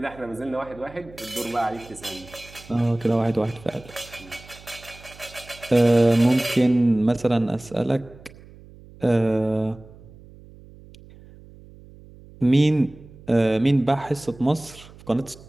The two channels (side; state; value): right; noise; hum, 21 dB below the sound